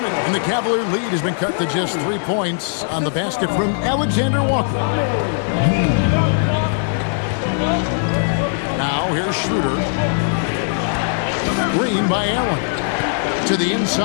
it, and the Cavalier lead has been cut to just 3 points on the basket from Alexander Walker. Now here's Schroeder. Green by Allen. To the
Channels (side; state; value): right; silent; digital silence